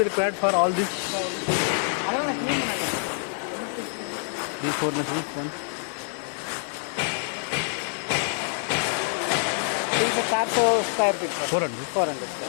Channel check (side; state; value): right; silent; 59 dB below the other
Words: required for all these அதெல்லாம் நான் க்ளீன் பண்ணல. 4 machines then? 400 स्क्वायर फीट पर 400. 400